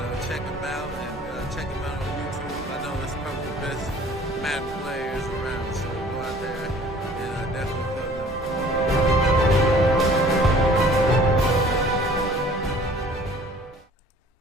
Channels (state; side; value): normal; both; correlation 0.51